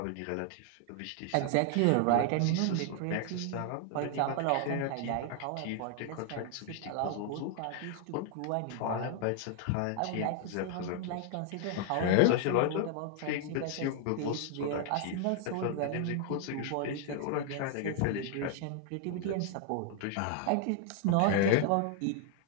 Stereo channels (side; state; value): both; different; correlation 0.00